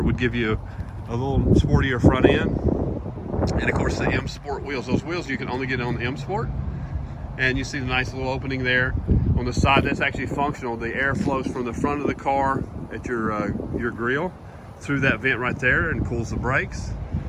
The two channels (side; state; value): both; identical; correlation 1.00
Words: would give you a little sportier front end. And of course the MSport wheels. Those wheels you can only get on the MSport. And you see the nice little opening there. On the side, that's actually functional. The air flows from the front of the car at your grille through that vent right there and cools the brakes.